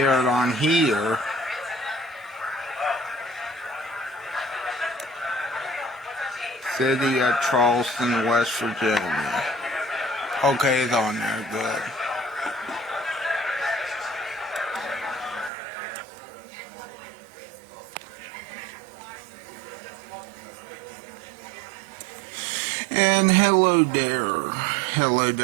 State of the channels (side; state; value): left; drops out; at 15.5 s